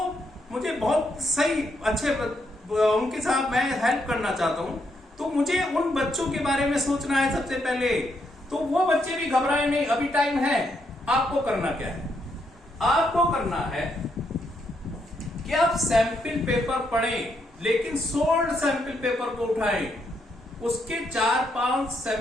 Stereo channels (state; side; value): normal; both; correlation 0.77